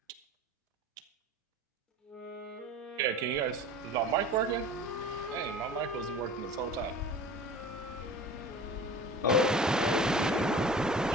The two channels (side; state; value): both; normal; correlation 0.40